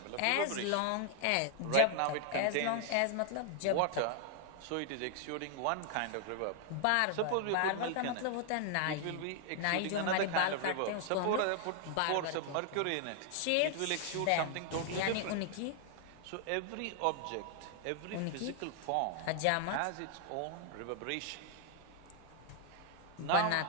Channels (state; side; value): different; both; correlation 0.00